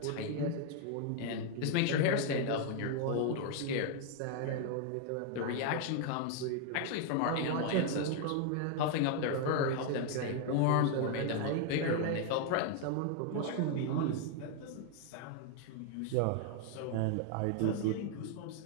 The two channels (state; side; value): different; both; correlation 0.00